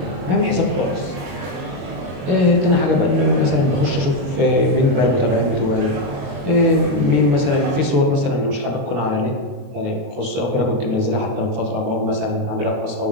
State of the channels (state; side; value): late; left; 21 ms